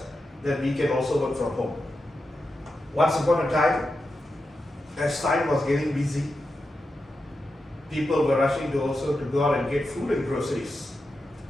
that we can also work from home. Once upon a time, as time was getting busy, people were rushing to also to go out and get food and groceries.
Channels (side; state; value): both; normal; correlation 0.89